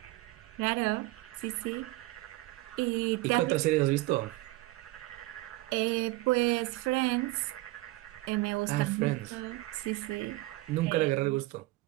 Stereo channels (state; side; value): quieter; left; 19.7 dB